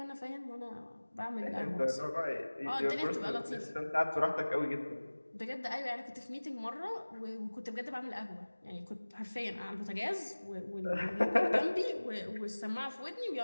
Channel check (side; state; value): both; inverted; correlation -1.00